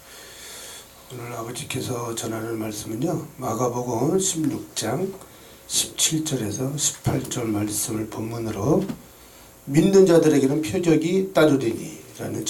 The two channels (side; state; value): both; identical; correlation 1.00